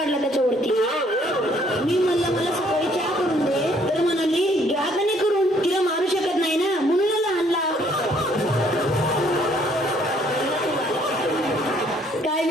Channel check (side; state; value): both; normal; correlation 0.64